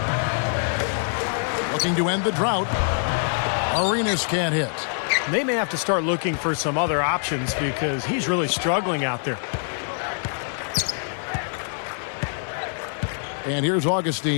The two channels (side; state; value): right; silent; 60 dB below the other